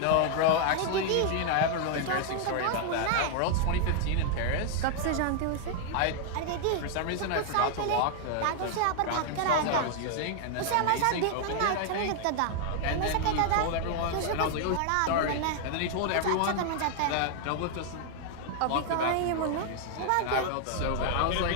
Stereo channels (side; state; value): both; different; correlation 0.00